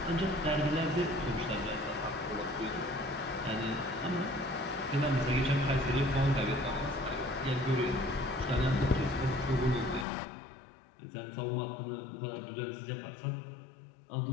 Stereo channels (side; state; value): right; drops out; at 10.1 s